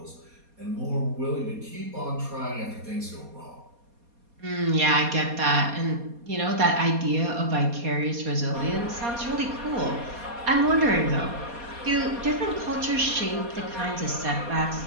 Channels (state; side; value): late; left; 4.2 ms